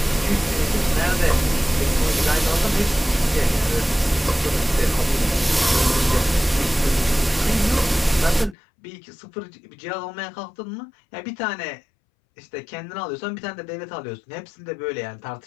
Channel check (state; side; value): drops out; right; at 8.6 s